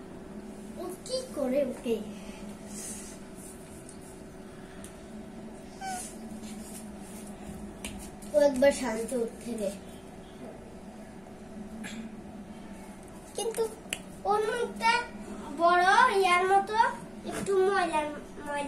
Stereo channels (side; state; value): left; noise; hum, 28 dB below the sound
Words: ও কি করে ওকে? ও একবার শান্তি উঠতে রে, কিন্তু ওর মুখটা বড় ইয়ার মতো একটু ময়লা